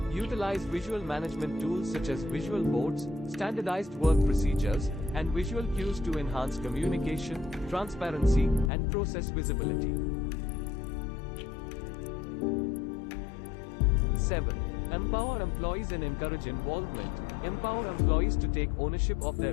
Utilize visual management tools such as visual boards, standardized work procedures, and visual cues to enhance communication, transparency, and process visibility. 7. Empower employees and encourage involvement. Empower employees to take ownership of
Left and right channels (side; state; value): right; drops out; at 8.7 s